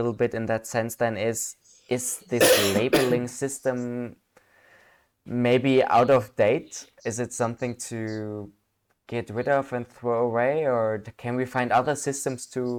bit in that sense then is, is this labeling system maybe out of date? Is it something to get rid of and throw away, or can we find other systems to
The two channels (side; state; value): both; identical; correlation 1.00